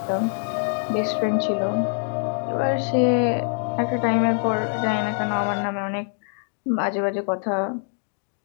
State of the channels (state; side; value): silent; right; digital silence